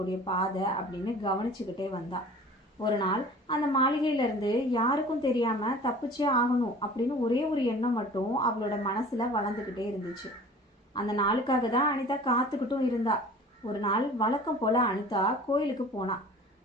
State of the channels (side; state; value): both; normal; correlation 0.44